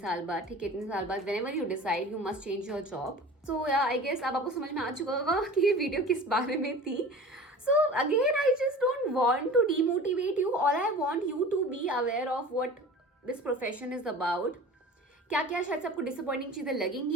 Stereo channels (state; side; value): normal; both; correlation 0.39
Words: बाद, ठीक है, इतने साल बाद, whenever you decide you must change your job. So yeah, I guess अब आपको समझ में आ चुका होगा कि ये वीडियो किस बारे में थी. So again, I just don't want to demotivate you. All I want you to be aware of what this profession is about. क्या क्या शायद से आपको डिसअपॉइंटिंग चीज़ें